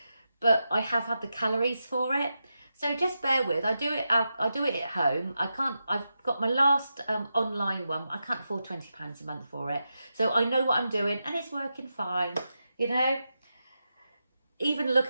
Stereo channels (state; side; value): inverted; both; correlation -0.89